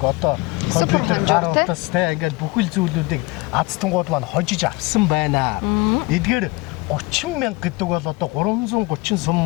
одоо компьютер, гар утас те ингээд бүхэл зүйлүүдийг азтангууд маань хожиж авсан байна. Эдгээр 30,000 гэдэг бол одоо 330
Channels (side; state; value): right; quieter; 23.4 dB